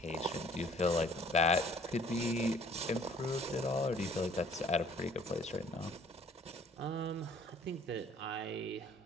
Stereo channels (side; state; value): both; normal; correlation 0.54